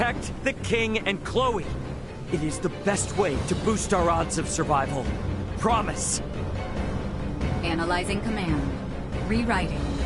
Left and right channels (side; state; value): both; identical; correlation 1.00